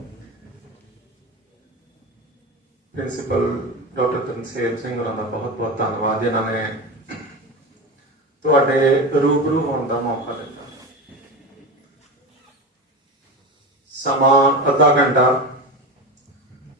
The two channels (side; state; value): both; normal; correlation 0.24